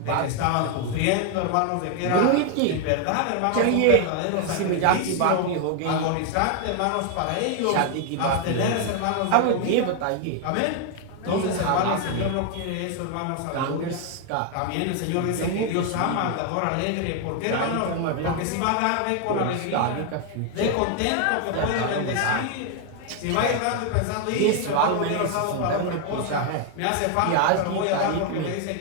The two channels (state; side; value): different; both; correlation 0.01